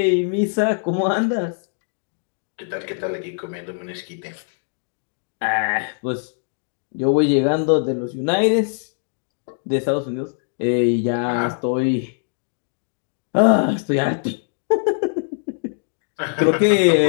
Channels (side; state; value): right; silent; digital silence